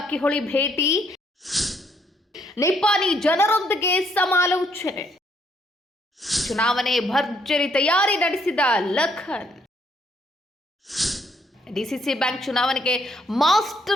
ಭೇಟಿ. ನಿಪಾನಿ ಜನರೊಂದಿಗೆ ಸಮಾಲೋಚನೆ. ಚುನಾವಣೆ ಭರ್ಜರಿ ತಯಾರಿ ನಡೆಸಿದ ಲಖನ್. ಡಿಸಿಸಿ ಬ್ಯಾಂಕ್ ಚುನಾವಣೆಗೆ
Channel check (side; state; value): both; normal; correlation 0.70